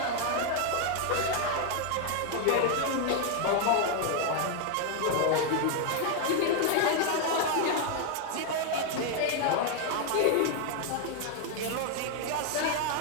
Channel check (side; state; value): both; different; correlation 0.01